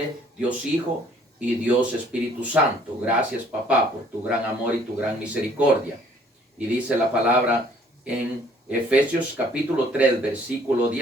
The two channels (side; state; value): both; normal; correlation 0.59